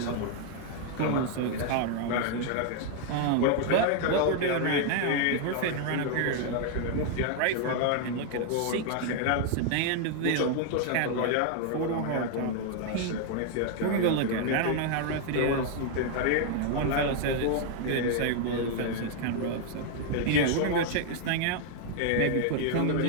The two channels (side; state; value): both; different; correlation 0.00